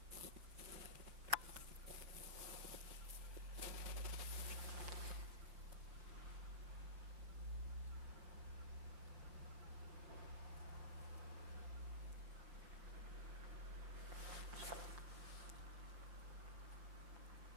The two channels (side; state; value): left; late; 5.6 ms